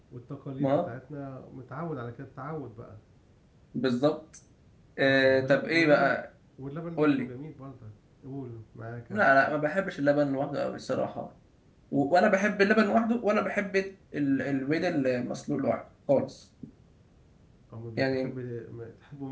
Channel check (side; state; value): both; identical; correlation 1.00